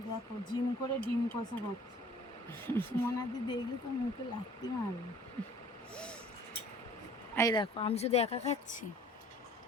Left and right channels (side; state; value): both; normal; correlation 0.52